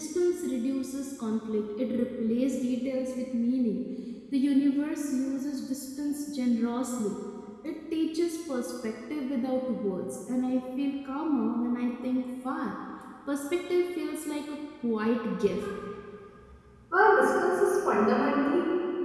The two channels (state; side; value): identical; both; correlation 1.00